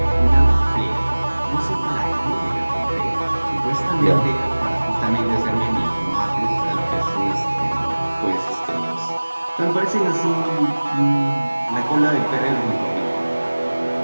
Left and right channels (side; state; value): both; inverted; correlation -1.00